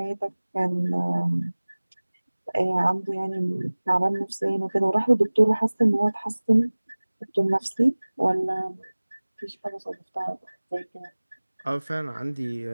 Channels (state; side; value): inverted; both; correlation -1.00